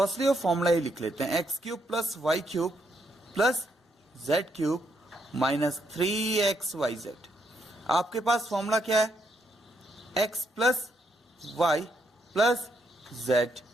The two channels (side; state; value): both; normal; correlation 0.76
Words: वो फॉर्मूला ही लिख लेते हैं, x cube plus y cube plus z cube minus 3xyz। आपके पास फॉर्मूला क्या है, x plus y plus z